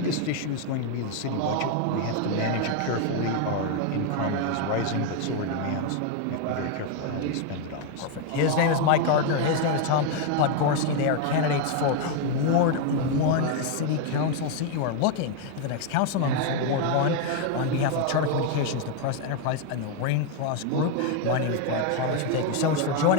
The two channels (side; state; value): both; different; correlation 0.01